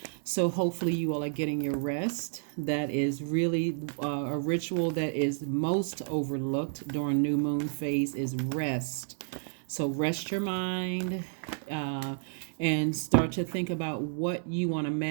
So hopefully you all are getting your rest. That is really a ritual that is most overlooked during new moon phase is rest. So rest your mind and start to think about what you want to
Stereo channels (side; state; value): left; silent; 57 dB below the other